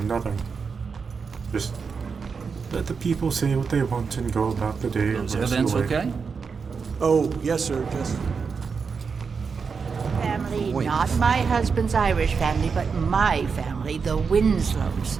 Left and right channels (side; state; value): left; quieter; 5.5 dB